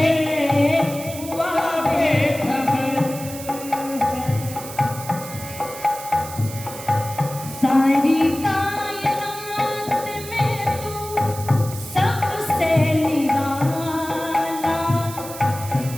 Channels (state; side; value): noise; right; hiss, 12 dB below the sound